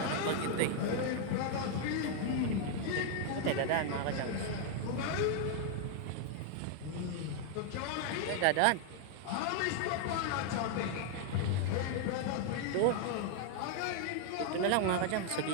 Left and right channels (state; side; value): different; both; correlation 0.00